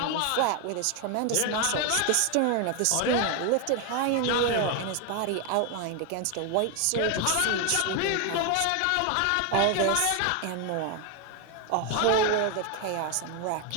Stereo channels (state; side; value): different; both; correlation 0.01